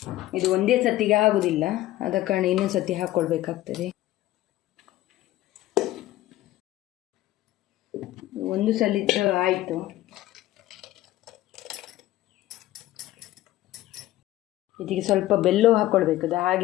ಇದು ಒಂದೇ ಸತಿಗೆ ಆಗುವುದಿಲ್ಲ, ಆದ ಕಾರಣ ಇನ್ನೊಂದು ಸತಿ ಹಾಕ್ಕೊಳ್ಬೇಕಾಗ್ತದೆ. ಒಂದು ಸಲ ಆಯಿತು. ಇದಕ್ಕೆ ಸ್ವಲ್ಪ ಬೆಲ್ಲ ಹಾಕ್ಕೊಳ್ಬೇಕು. ಅದು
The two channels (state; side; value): quieter; right; 15.5 dB